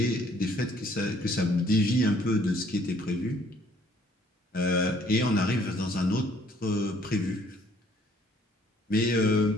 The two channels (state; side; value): normal; both; correlation 0.61